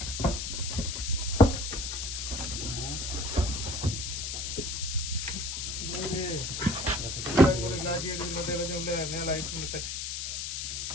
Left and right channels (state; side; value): noise; left; hiss, 3 dB below the sound